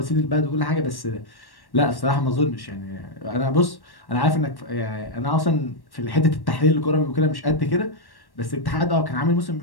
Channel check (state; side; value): late; right; 1.1 ms